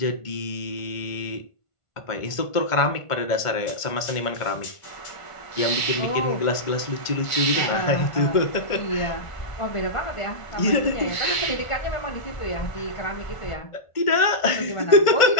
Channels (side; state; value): right; late; 1.5 ms